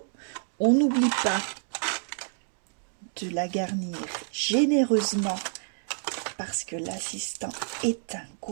On n'oublie pas de la garnir généreusement parce que l'assistant est un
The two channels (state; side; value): silent; left; digital silence